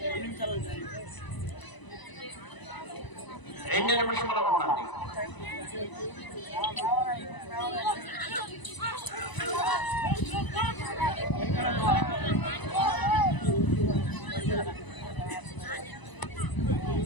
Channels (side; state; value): right; late; 1.0 ms